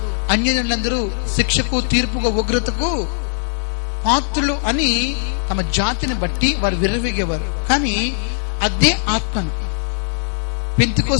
అన్యజనులందరూ శిక్షకు, తీర్పుకు, ఉగ్రతకు పాత్రులు అని తమ జాతిని బట్టి వారు విర్రవీగేవారు. కానీ అదే ఆత్మను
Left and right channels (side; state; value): right; silent; digital silence